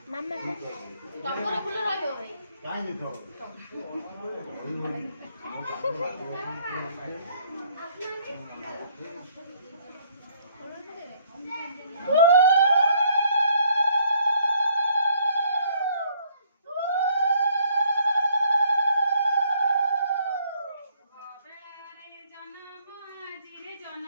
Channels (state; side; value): inverted; both; correlation -0.64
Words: ମାମା ଟଗର ଫୁଲ ରହିବ ଭାଇ କାଇଁ ତ